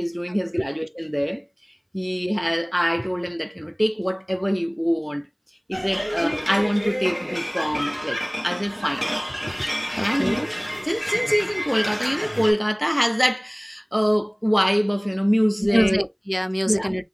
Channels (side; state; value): both; identical; correlation 1.00